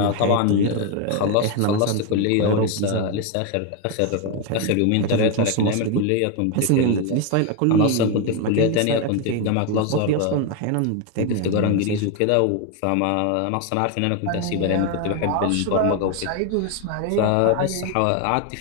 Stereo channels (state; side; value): different; both; correlation 0.01